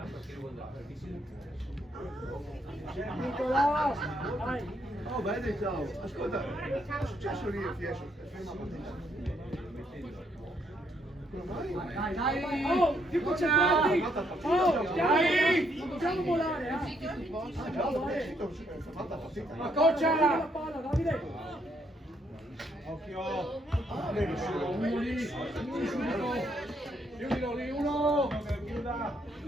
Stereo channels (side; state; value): both; normal; correlation 0.73